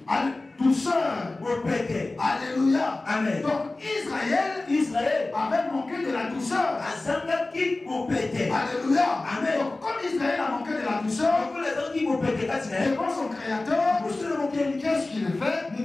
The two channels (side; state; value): right; quieter; 3.1 dB